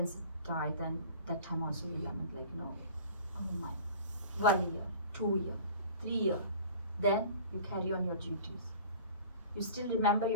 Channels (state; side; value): inverted; both; correlation -0.43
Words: die, then that time also we lament, like oh my, 1 year, 2 year, 3 year, then you carry on your duties. You still remember